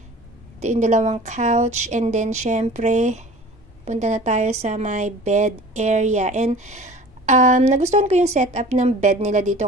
yung dalawang couch. And then, syempre, punta na tayo sa my bed area. And, nagustuhan ko yung setup ng bed nila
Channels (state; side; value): normal; both; correlation 0.43